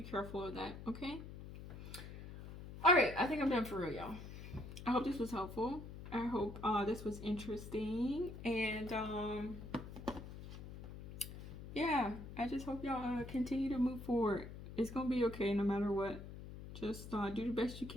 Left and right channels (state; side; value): noise; left; hum, 11 dB below the sound